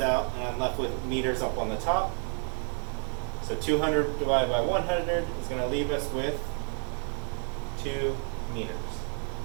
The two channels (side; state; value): left; quieter; 38.9 dB